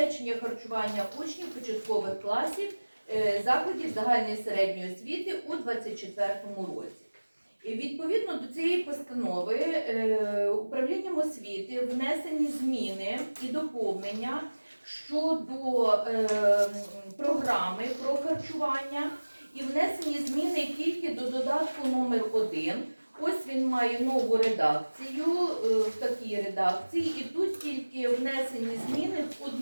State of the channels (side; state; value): both; inverted; correlation -1.00